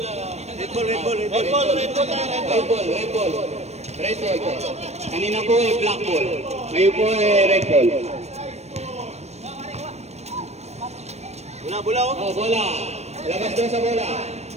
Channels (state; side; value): late; left; 0.31 ms